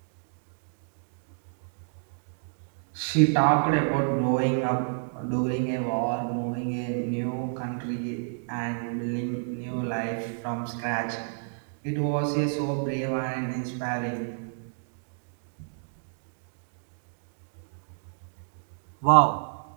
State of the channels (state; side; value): silent; left; digital silence